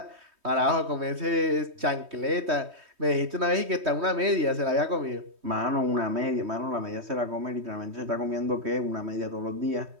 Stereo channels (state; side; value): late; left; 3.2 ms